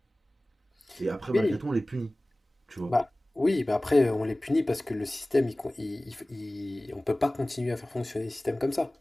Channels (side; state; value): both; normal; correlation 0.98